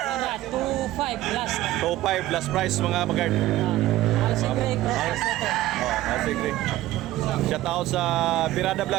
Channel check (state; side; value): quieter; left; 15.5 dB